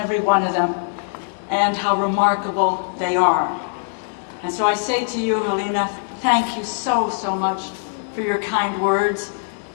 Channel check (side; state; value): right; silent; digital silence